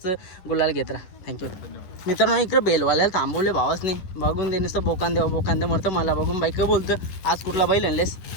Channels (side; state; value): right; late; 10 ms